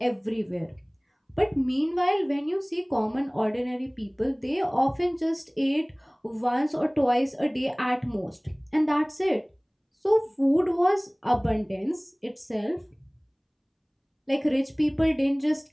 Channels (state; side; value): identical; both; correlation 1.00